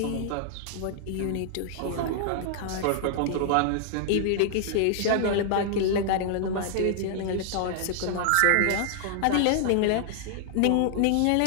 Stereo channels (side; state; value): both; different; correlation -0.01